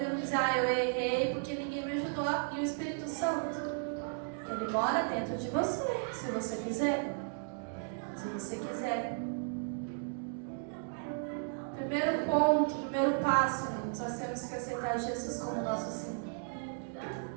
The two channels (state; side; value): silent; left; digital silence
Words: dizer, eu errei porque ninguém me ajudou. E o Espírito Santo, ele mora dentro de você, se você quiser. Se você quiser. Primeiro ponto, primeiro passo, nós temos que aceitar Jesus como nosso Senhor.